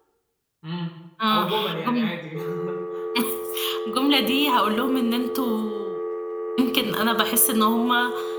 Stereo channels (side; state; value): both; identical; correlation 1.00